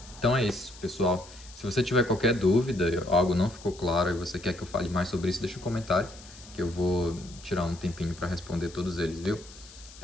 Então é isso, pessoal. Se você tiver qualquer dúvida, algo não ficou claro e você quer que eu fale mais sobre isso, deixa um comentário, que eu vou tirar um tempinho para responder todos eles, viu?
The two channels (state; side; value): noise; left; hiss, 19 dB below the sound